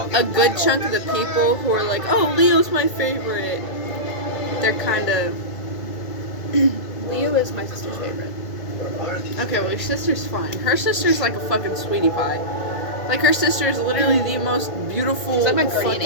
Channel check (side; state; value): right; late; 1.8 ms